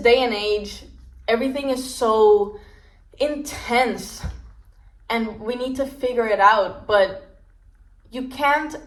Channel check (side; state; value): both; identical; correlation 1.00